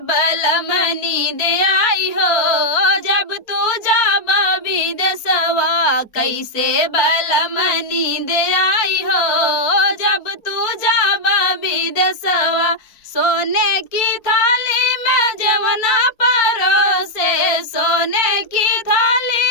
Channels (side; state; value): right; late; 4.4 ms